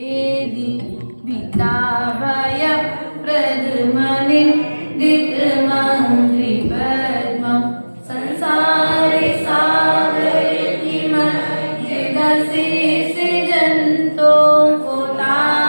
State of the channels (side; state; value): both; inverted; correlation -1.00